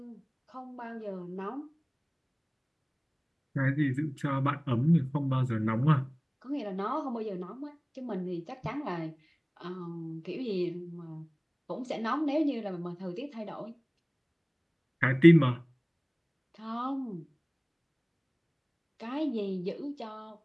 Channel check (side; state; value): both; identical; correlation 1.00